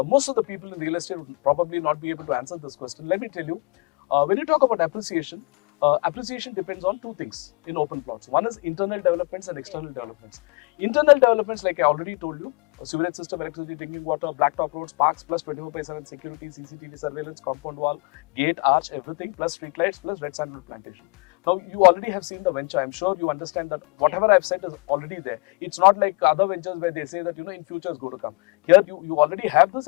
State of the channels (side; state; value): right; quieter; 29.1 dB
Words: most of the people in real estate would probably not be able to answer this question. Let me tell you, when you talk about appreciation, appreciation depends on 2 things in open plots. One is internal developments and external developments. Internal developments, like I already told you, sewerage system, electricity, drinking water, blacktop roads, parks, plus 24/7 security, CCTV surveillance, compound wall, gate, arch, everything, plus street lights, plus red sandalwood plantation. Now, you already have seen the venture. I'm sure you understand that whatever I've said is already there. It's not like other ventures where they say that, in future is going to come. Here, you already have this